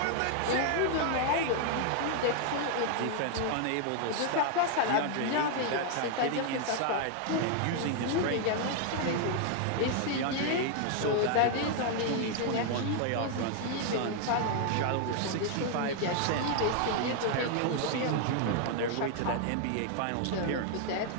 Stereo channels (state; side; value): different; both; correlation 0.00